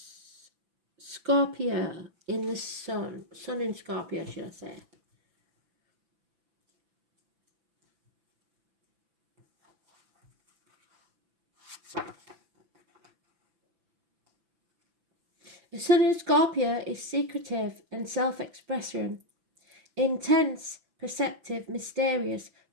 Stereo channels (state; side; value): late; left; 5.9 ms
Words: Scorpio in the sun in Scorpio, should I say. The sun in Scorpio is secretive and self-expression, intense, perceptive, mysterious,